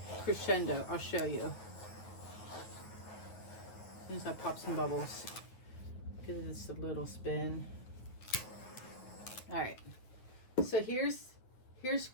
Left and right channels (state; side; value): late; right; 9.3 ms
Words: Crescendo. I'll show you. As soon as I pop some bubbles. Give this a little spin. Alright. So here's